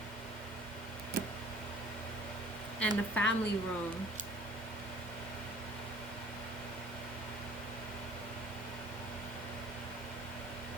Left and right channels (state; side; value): normal; both; correlation 0.51